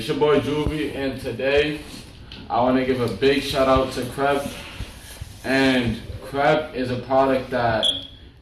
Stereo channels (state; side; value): identical; both; correlation 1.00